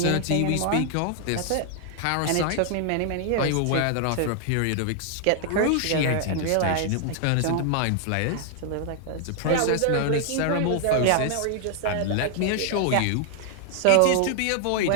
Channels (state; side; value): different; both; correlation 0.00